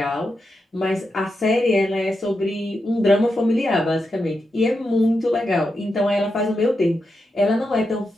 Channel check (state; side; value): normal; both; correlation 0.87